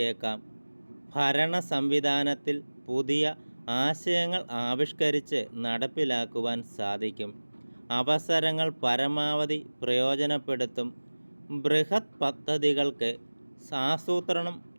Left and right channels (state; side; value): inverted; both; correlation -1.00